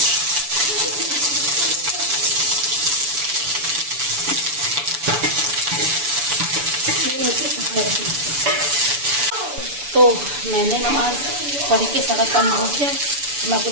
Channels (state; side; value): late; left; 6.9 ms